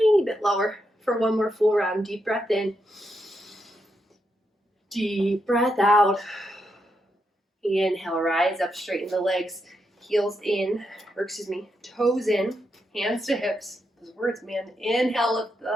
bit lower for one more full round. Deep breath in. Deep breath out. Inhale, rise up, straighten the legs, heels in, toes in, hands to hips. Those words, man. Inhale, lift the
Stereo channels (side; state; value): both; normal; correlation 0.82